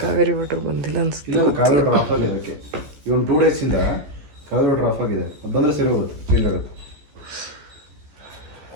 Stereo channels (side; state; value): left; late; 14 ms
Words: ಕಾವೇರಿ ವಾಟರ್ ಬಂದಿಲ್ಲ ಅನ್ಸುತ್ತೆ. ಕಾವೇರಿ ವಾಟರ್ ಆಫ್ ಆಗಿದೆ. ಅದಕ್ಕೆ ಇವನ್ 2 days ಇಂದ ಕಾವೇರಿ ವಾಟರ್ ಆಫ್ ಆಗಿದೆ. ಅದು ಬಂದ್ರೆ ಸರಿ ಹೋಗುತ್ತೆ, ಚೇಂಜ್ ಆಗುತ್ತೆ.